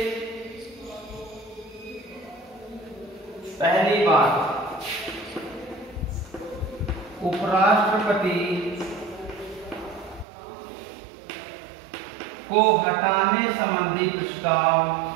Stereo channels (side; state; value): left; drops out; at 10.2 s